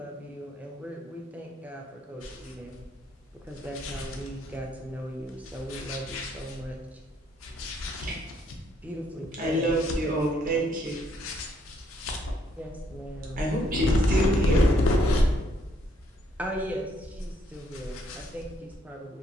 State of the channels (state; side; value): normal; both; correlation 0.70